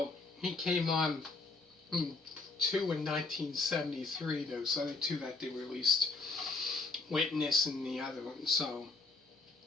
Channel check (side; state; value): right; quieter; 3.7 dB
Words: he came on two in 1973. Those other two that they released, Witness and the other one. So,